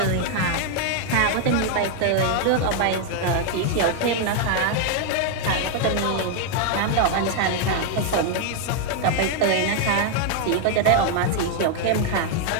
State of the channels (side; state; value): both; different; correlation 0.00